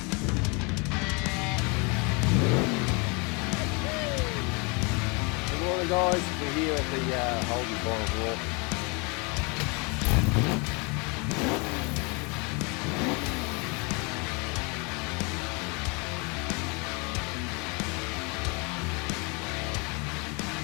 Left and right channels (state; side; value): quieter; right; 30.9 dB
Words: morning, guys. We're here at the Holden Bottle Walk.